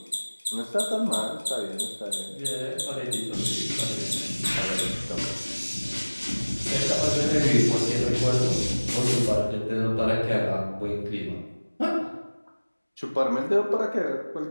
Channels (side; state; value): both; inverted; correlation -1.00